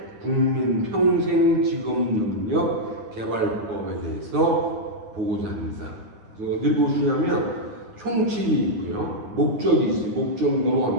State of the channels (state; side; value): late; left; 9.3 ms